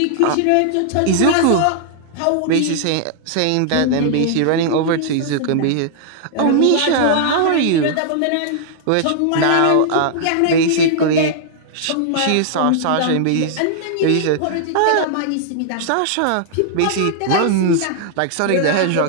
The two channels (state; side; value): different; both; correlation -0.01